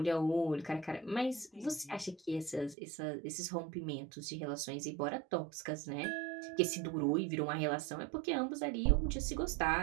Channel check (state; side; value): drops out; left; at 2.8 s